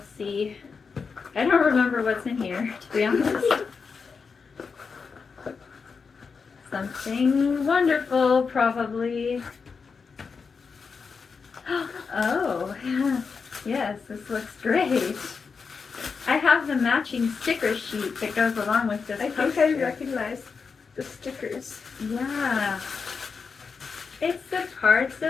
see. I don't remember what's in here, to be honest. Something wonderful, probably. Oh, yes, this looks great. I have the matching sticker sheet that goes along with this poster. I think I recognize the stickers. Yeah. It's the parts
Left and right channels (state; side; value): quieter; right; 5.3 dB